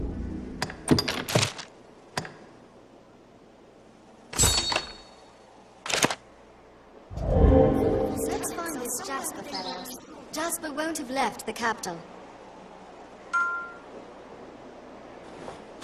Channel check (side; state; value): both; identical; correlation 1.00